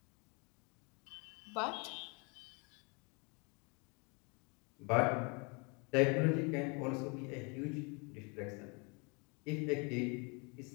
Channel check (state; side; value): quieter; right; 32.3 dB